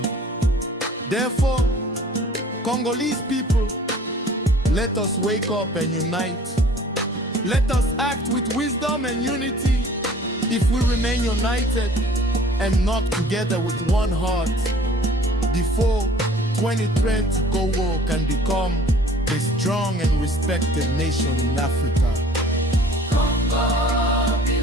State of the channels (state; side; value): normal; both; correlation 0.51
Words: Therefore, Congolese people, let us wake up and unite. Let us act with wisdom and unity. If we remain united and not together with one heart, before 2020 Congo can become a strong and respected nation in Africa. Congo